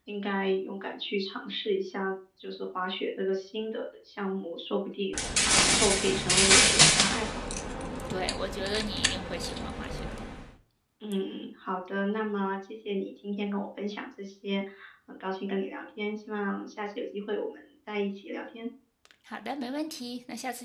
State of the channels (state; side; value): identical; both; correlation 1.00